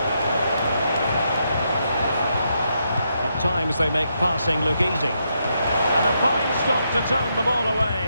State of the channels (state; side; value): inverted; both; correlation -0.80